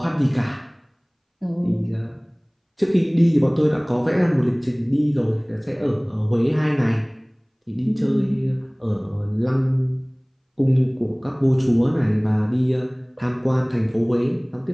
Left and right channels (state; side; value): identical; both; correlation 1.00